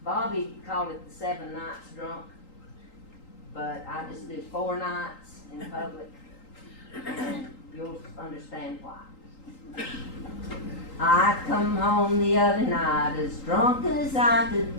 Bobby called it the 7 nights drunk, but I just did 4 nights in public, and you'll understand why. I come home the other night as drunk as I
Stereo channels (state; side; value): late; right; 3.8 ms